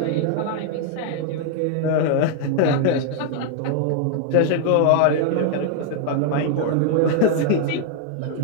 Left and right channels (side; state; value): both; different; correlation 0.00